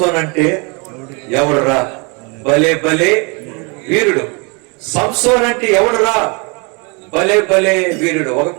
అంటే ఎవడురా భలే భలే వీరుడు. సంసోన్ అంటే ఎవడురా భలే భలే వీరుడు. ఒక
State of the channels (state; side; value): quieter; left; 31.8 dB